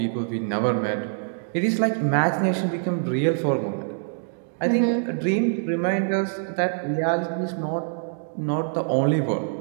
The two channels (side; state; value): left; silent; digital silence